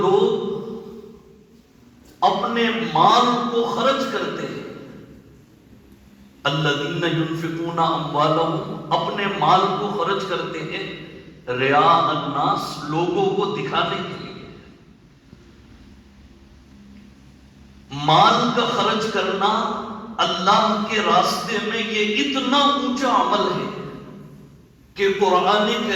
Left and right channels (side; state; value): both; identical; correlation 1.00